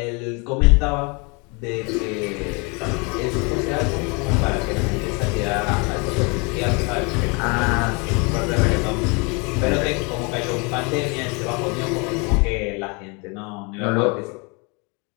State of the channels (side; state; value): right; quieter; 30.8 dB